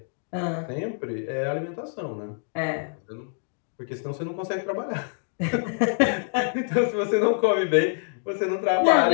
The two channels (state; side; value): silent; right; 61 dB below the other